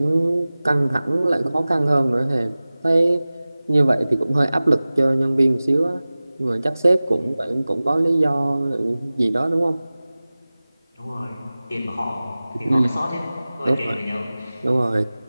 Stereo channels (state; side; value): inverted; both; correlation -0.98